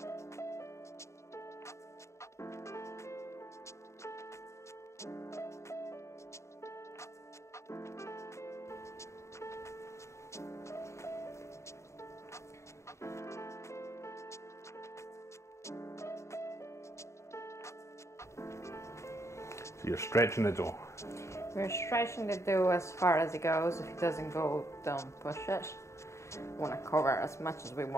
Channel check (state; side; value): late; right; 0.14 ms